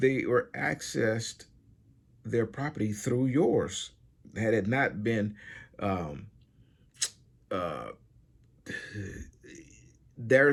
were accessed their property through yours. Had it not been um, uh,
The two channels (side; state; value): both; identical; correlation 1.00